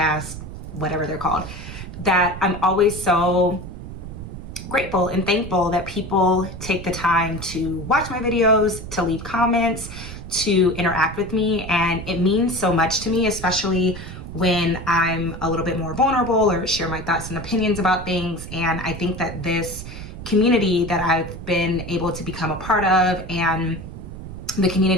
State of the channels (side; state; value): right; noise; rumble, 10 dB below the sound